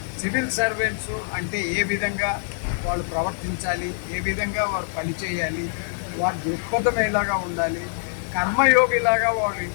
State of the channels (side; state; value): right; silent; digital silence